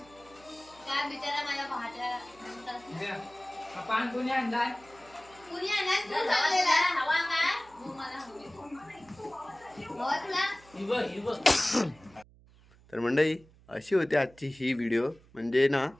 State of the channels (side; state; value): right; noise; hum, 26 dB below the sound